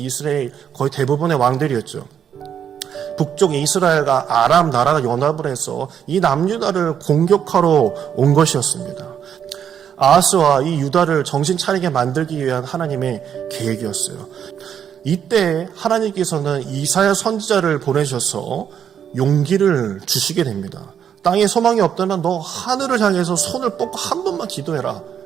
거의 대부분의 왕들이었죠. 북쪽 이스라엘과 아람 나라가 연합을 해서 이 남유다를 공격하러 온 것이었습니다. 아하스와 이 유다를 정신 차리게 만들기 위한 하나님의 계획이었어요. 이때 하나님께서는 이사야 선지자를 보내셔서 용기를 주시게 됩니다. 땅에 소망이 없다면 너 하늘을 향해서 손을 뻗고 한 번만 기도해라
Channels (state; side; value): quieter; left; 8.6 dB